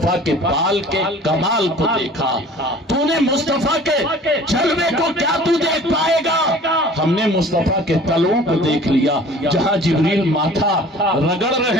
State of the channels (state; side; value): normal; both; correlation 0.47